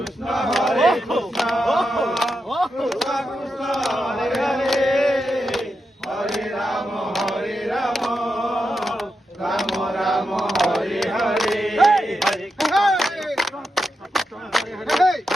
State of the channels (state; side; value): normal; both; correlation 0.86